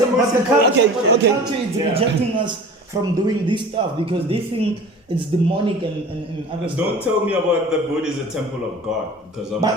culture is rejecting us from doing this stuff because they think it's demonic and other stuff. Don't tell me about the body is a temple of God, because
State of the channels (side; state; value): both; normal; correlation 0.39